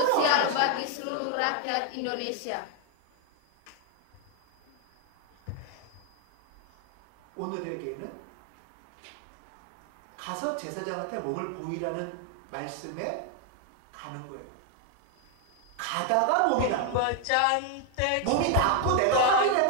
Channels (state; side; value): different; both; correlation 0.00